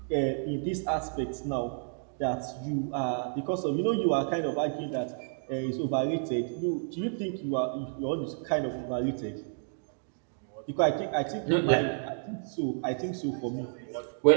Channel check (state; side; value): silent; left; digital silence